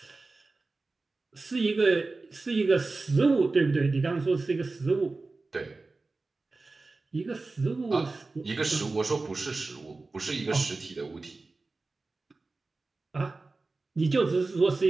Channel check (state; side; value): quieter; left; 3.6 dB